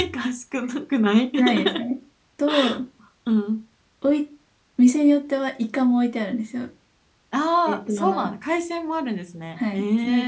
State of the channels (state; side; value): identical; both; correlation 1.00